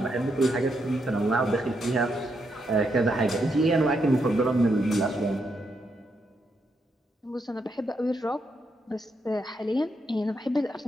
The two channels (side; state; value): both; normal; correlation 0.80